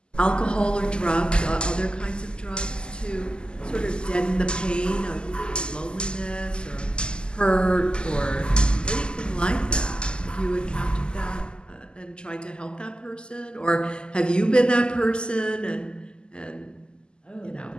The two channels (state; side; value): late; right; 0.048 ms